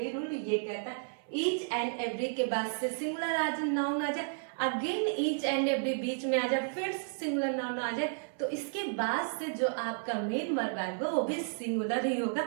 रूल ये कहता है ईच एंड एवरी के बाद से सिंगुलर नाउन आ जाए, अगेन ईच एंड एवरी बीच में आ जाए, फिर सिंगुलर नाउन आ जाए, तो इसके बाद से जो आपका मेन वर्ब आएगा वो भी सिंगुलर ही होगा,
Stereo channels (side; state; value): left; silent; 56 dB below the other